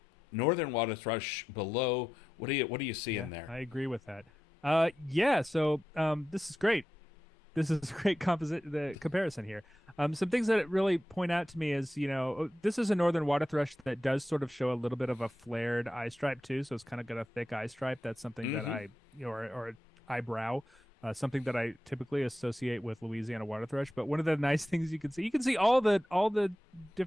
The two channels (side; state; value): both; normal; correlation 0.90